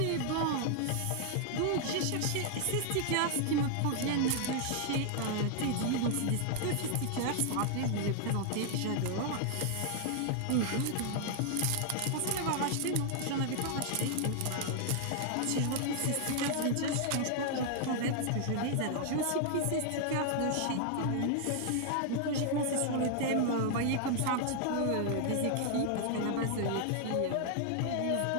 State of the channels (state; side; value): different; both; correlation 0.00